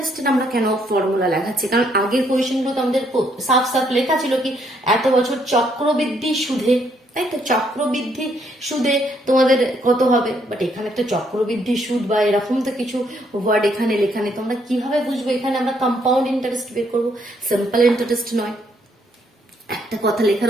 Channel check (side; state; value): both; normal; correlation 0.71